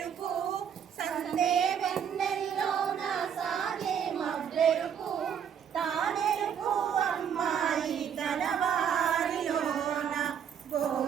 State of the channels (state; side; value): quieter; left; 8.1 dB